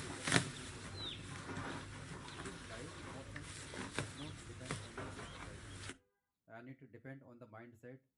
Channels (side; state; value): both; identical; correlation 1.00